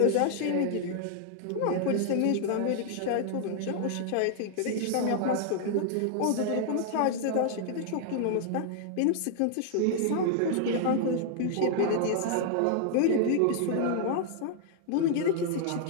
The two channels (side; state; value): both; different; correlation 0.00